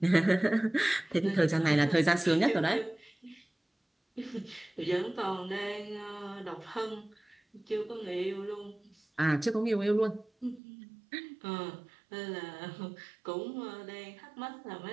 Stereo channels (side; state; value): left; drops out; at 10.6 s